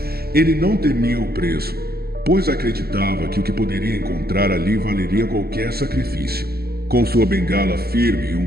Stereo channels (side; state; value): left; late; 0.45 ms